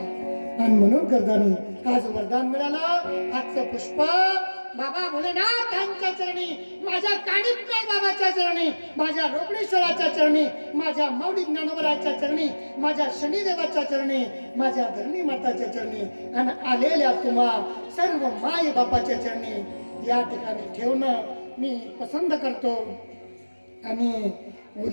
आणि म्हणून करताना आज वरदान मिळालं. आजचं पुष्प बाबा भोलेनाथांच्या चरणी, माझ्या कानिपनाथ बाबाच्या चरणी, माझ्या रोकडेश्वराच्या चरणी, माझ्या माऊली ज्ञानोबराच्या चरणी, माझ्या शनिदेवाच्या चरणी, माझ्या धरणी माताच्या चरणी, आणि आलेल्या तुम्हा सर्व माय बापाच्या चरणी या ठिकाणी ठेवणं मी पसंत करतो. आणि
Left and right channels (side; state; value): both; inverted; correlation -1.00